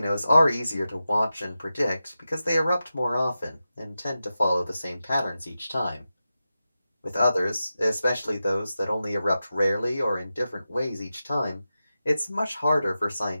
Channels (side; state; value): both; inverted; correlation -0.91